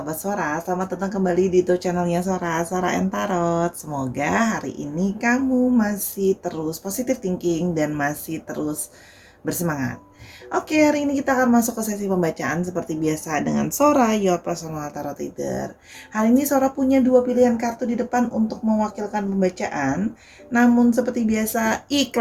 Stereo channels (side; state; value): both; identical; correlation 1.00